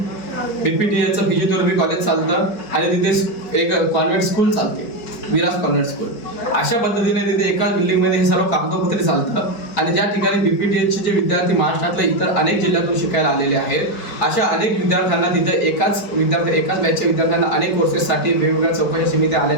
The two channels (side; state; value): right; late; 4.9 ms